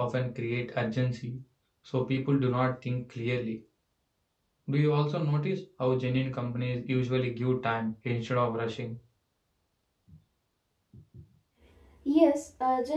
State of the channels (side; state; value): both; identical; correlation 1.00